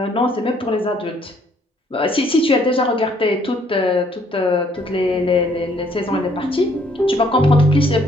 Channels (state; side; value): normal; both; correlation 0.65